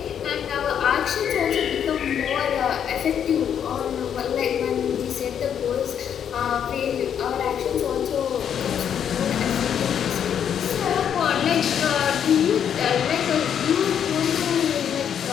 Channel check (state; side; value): quieter; right; 8.6 dB